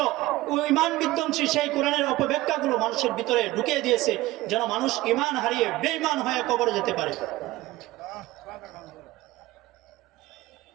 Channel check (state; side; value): quieter; left; 18.1 dB